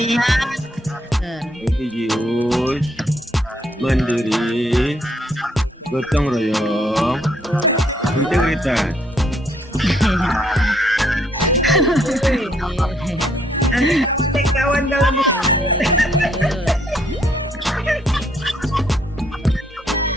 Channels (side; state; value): both; normal; correlation 0.69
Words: Religius. Mandiri. Gotong royong. Integritas. kawan kalau